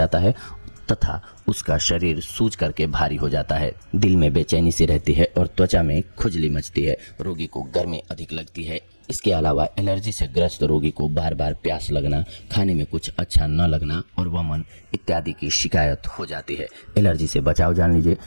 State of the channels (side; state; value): both; inverted; correlation -1.00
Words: है तथा उसका शरीर सूज करके भारी हो जाता है। दिल में बेचैनी सी रहती है और त्वचा में खुजली मचती है। रोगी को गर्मी अधिक लगती है। इसके अलावा एलर्जी से ग्रस्त रोगी को बार बार प्यास लगना, खाने में कुछ अच्छा न लगना और वमन इत्यादि की शिकायत हो जाती है। एलर्जी से बचाव जान लीजिए।